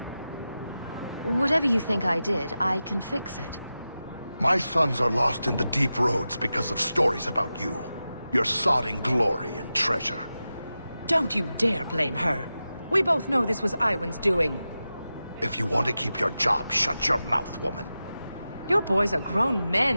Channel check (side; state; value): both; inverted; correlation -0.93